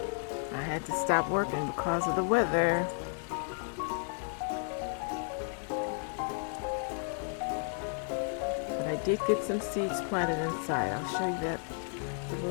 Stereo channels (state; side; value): silent; right; 56 dB below the other